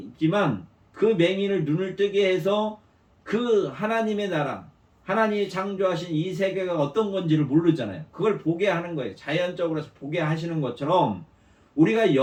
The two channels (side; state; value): both; identical; correlation 1.00